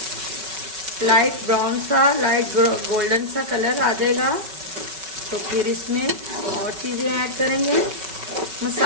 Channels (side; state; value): left; late; 5.3 ms